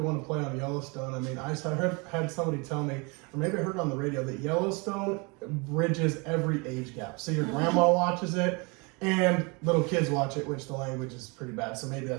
want to play on Yellowstone, I mean, I had somebody tell me, or maybe I heard on the radio, that Yellowstone bridges every age gap. So your grandma watches it, and little kids watch it, which the language is pretty bad, so maybe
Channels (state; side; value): quieter; left; 30.0 dB